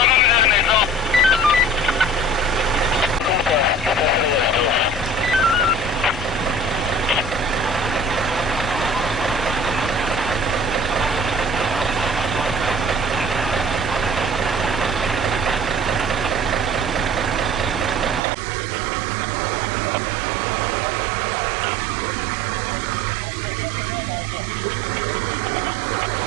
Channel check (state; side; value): drops out; left; at 18.2 s